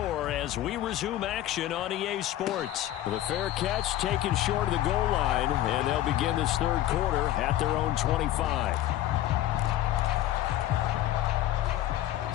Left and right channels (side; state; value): right; quieter; 13.4 dB